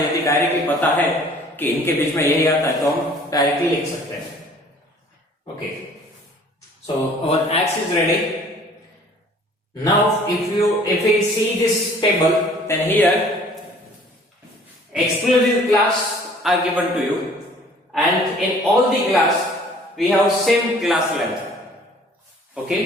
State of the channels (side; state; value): both; normal; correlation 0.53